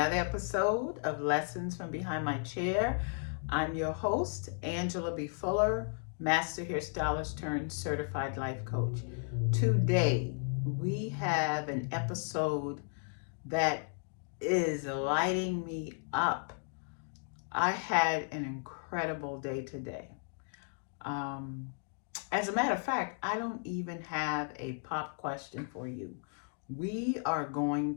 episode of Lessons from Behind My Chair. I'm your host, Angela B. Fuller, Master Hairstylist turned Certified Life Coach. Today, we have an episode that is lighting me up. I had an incredible day today. Um, as a matter of fact, I don't even have a pop question for you. We are going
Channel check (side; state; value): right; silent; 55 dB below the other